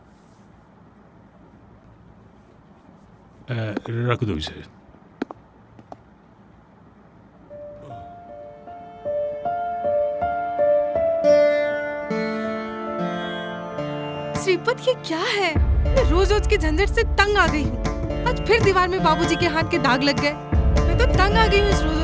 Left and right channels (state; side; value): identical; both; correlation 1.00